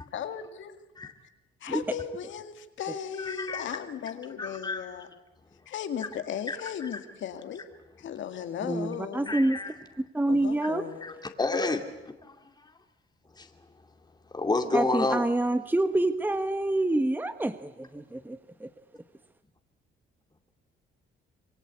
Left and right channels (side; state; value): both; normal; correlation 0.73